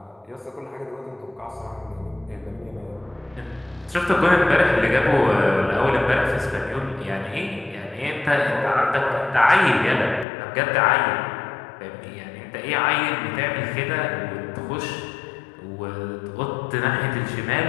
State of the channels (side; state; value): right; drops out; at 10.2 s